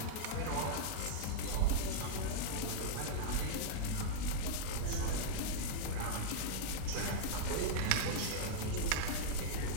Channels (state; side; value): different; both; correlation -0.02